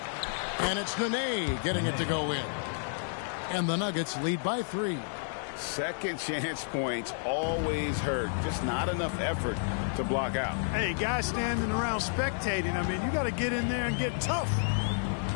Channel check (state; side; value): silent; right; digital silence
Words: And it's Nene getting it to go in. And the Nuggets lead by 3. Second chance points always hurt. Just not enough effort to block out. Hey, guys standing around spectating. I mean, you got to get in there and get tough.